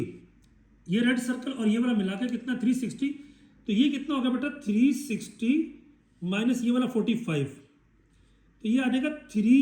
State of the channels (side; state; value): both; identical; correlation 1.00